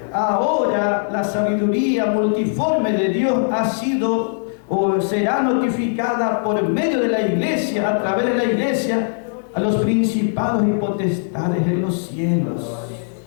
ahora la sabiduría multiforme de Dios ha sido o será notificada por medio de la iglesia, a través de la iglesia, a los principados y potestades en los cielos.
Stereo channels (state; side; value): silent; right; digital silence